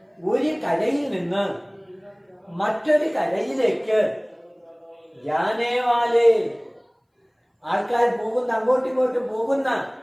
ഒരു കരയിൽ നിന്ന് മറ്റൊരു കരയിലേക്ക്, ജാനേവാലെ ആൾക്കാർ പോകുന്ന, അങ്ങോട്ടും ഇങ്ങോട്ടും പോകുന്ന,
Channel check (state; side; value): identical; both; correlation 1.00